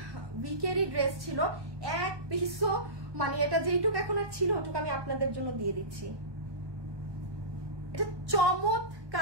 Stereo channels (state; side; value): late; left; 1.2 ms